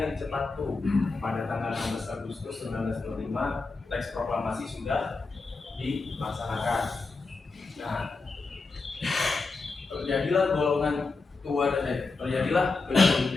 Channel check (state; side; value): quieter; right; 4.0 dB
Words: yang cepat tuh pada tanggal 16 Agustus 1945 teks proklamasi sudah dilaksanakan. Nah, terjadilah golongan tua dan terjadilah